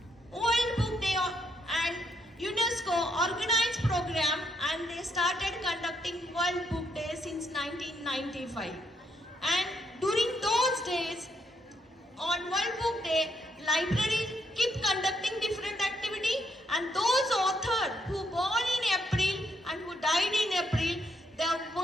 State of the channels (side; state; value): both; normal; correlation 0.76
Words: World Book Day and UNESCO organized program and they started conducting World Book Day since 1995. And during those days, on World Book Day, libraries keep conducting different activity, and those authors who born in April and who died in April, their